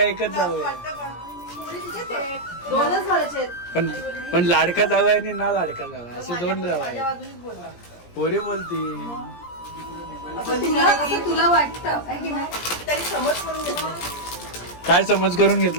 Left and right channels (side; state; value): right; late; 17 ms